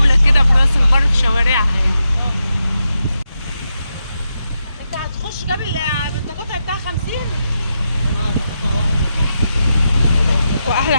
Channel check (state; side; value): inverted; both; correlation -0.86